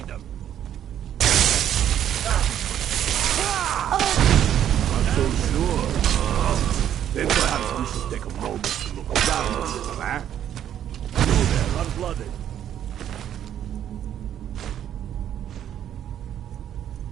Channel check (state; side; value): quieter; left; 10.3 dB